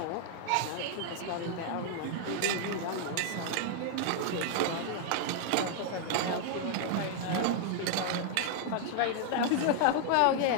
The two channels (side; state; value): both; different; correlation 0.00